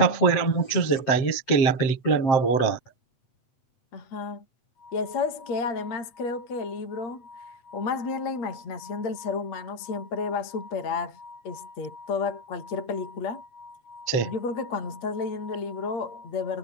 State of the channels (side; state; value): right; late; 7.6 ms